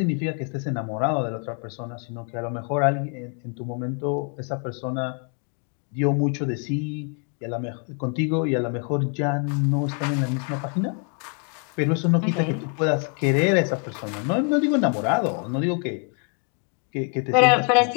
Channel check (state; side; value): quieter; right; 38.8 dB